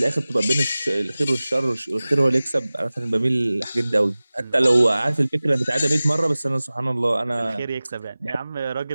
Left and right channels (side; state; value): both; inverted; correlation -0.98